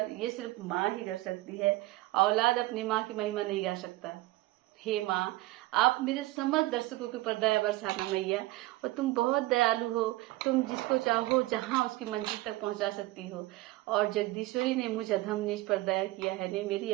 ये सिर्फ माँ ही कर सकती है। औलाद अपनी माँ की महिमा नहीं गा सकता। हे माँ, आप मेरे समस्त दर्शकों के ऊपर दया बरसाना मैया। और तुम बहुत दयालु हो, तुम जिसको चाहो जहाँ उसकी मंजिल तक पहुँचा सकती हो। और जगदीश्वरी ने मुझ अधम नीच पर दया किया है। नहीं, मेरी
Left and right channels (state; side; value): quieter; left; 18.9 dB